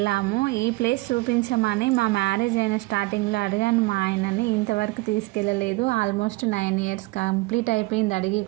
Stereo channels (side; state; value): left; quieter; 22.3 dB